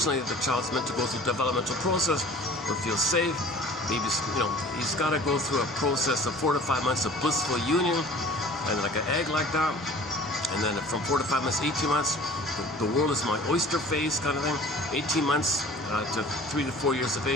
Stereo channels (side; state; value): both; normal; correlation 0.46